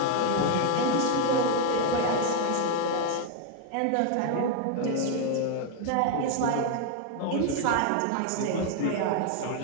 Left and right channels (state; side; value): different; both; correlation 0.01